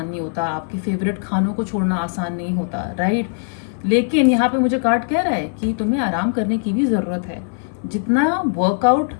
नहीं होता, आपके फेवरेट खानों को छोड़ना आसान नहीं होता, राइट। लेकिन यहाँ पे मुझे कार्ड कह रहा है कि तुम्हें आराम करने की भी जरूरत है। जितना वर्कआउट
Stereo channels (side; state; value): right; silent; digital silence